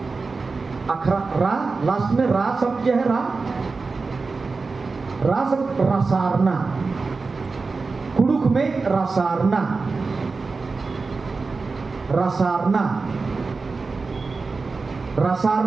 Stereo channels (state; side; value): quieter; left; 4.2 dB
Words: अखरा रा, लास्ट में रा शब्द क्या है, रा शब्द रसारना, कुड़ुक में रसारना, रसारना,